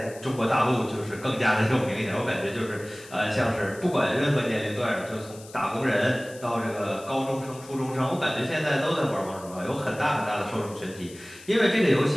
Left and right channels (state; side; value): noise; left; hiss, 19 dB below the sound